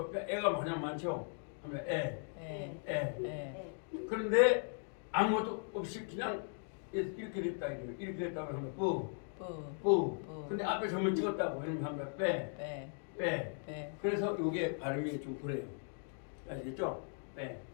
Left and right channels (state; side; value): silent; right; 52 dB below the other